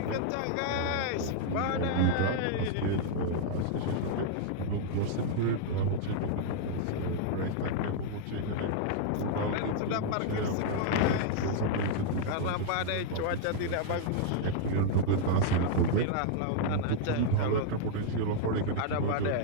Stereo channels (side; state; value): both; different; correlation -0.01